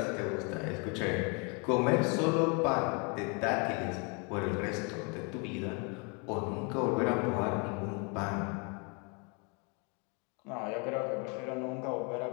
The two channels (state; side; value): quieter; right; 33.7 dB